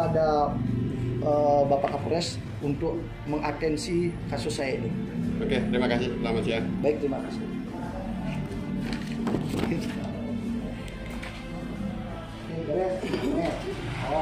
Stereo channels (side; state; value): both; identical; correlation 1.00